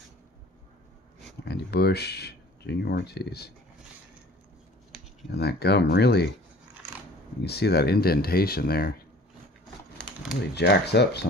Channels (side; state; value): both; normal; correlation 0.48